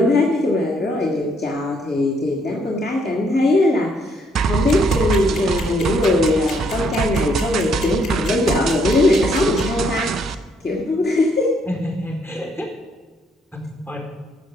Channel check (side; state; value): both; normal; correlation 0.70